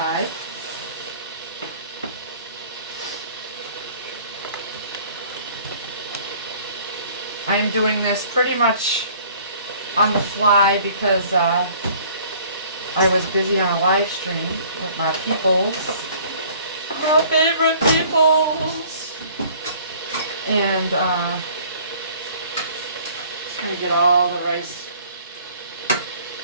I am doing this pretty much on the fly because I was busy on a live stream with my peoples, my favorite peoples, and just gonna get all the rice.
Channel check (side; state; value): both; inverted; correlation -0.54